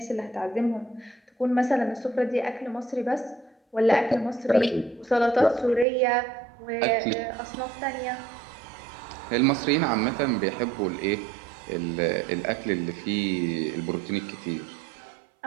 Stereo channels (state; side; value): drops out; left; at 5.9 s